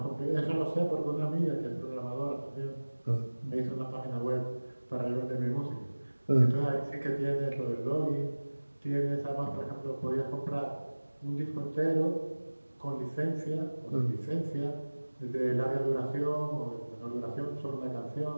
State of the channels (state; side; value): inverted; both; correlation -1.00